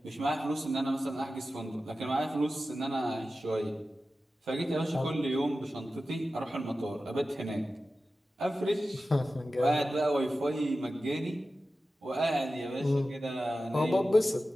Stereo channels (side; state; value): both; normal; correlation 0.94